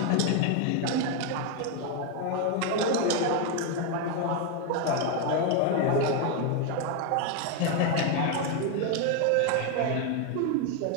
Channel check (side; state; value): both; different; correlation 0.01